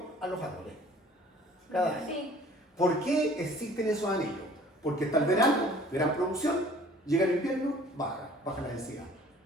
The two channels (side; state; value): both; normal; correlation 0.52